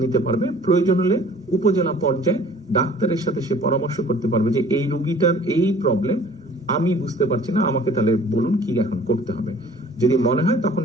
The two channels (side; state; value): right; noise; hum, 30 dB below the sound